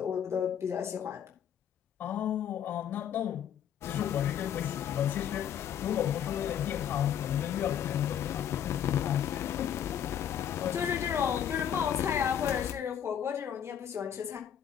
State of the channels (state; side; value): quieter; right; 9.3 dB